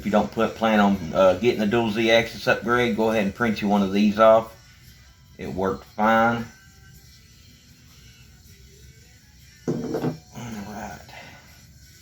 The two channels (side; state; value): both; identical; correlation 1.00